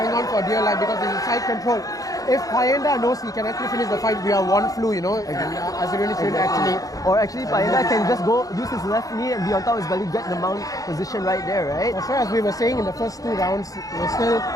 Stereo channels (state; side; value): late; right; 0.17 ms